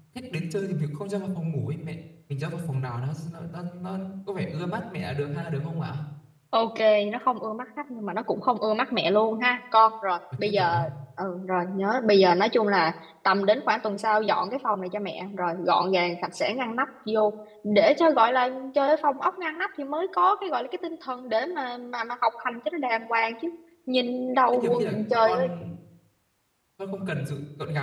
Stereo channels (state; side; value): identical; both; correlation 1.00